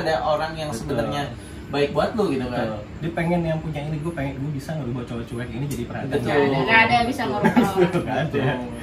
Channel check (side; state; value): both; identical; correlation 1.00